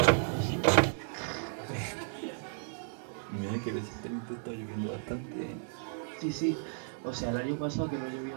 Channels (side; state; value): left; silent; digital silence